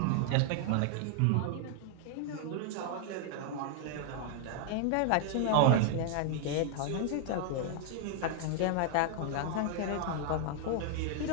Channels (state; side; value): different; both; correlation -0.01